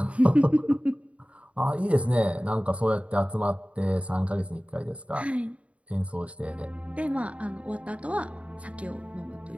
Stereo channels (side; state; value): left; late; 0.064 ms